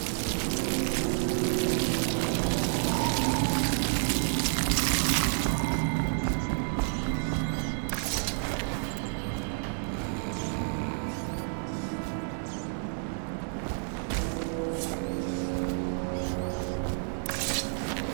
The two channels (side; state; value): left; silent; 56 dB below the other